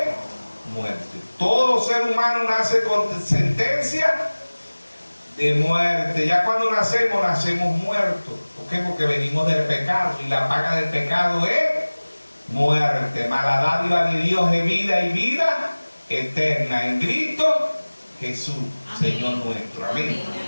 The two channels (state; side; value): inverted; both; correlation -1.00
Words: muerte. Todo ser humano nace con sentencia de muerte. Ya cuando nacemos, nacemos muertos. ¿Por qué? Porque venimos del pecado y la paga del pecado es muerte. Mas la dádiva de Dios es vida y vida eterna en Cristo Jesús, Señor nuestro. Amén.